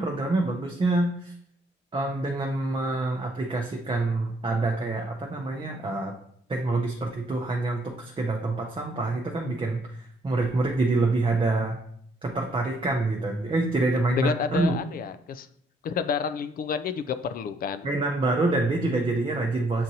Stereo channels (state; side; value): normal; both; correlation 0.69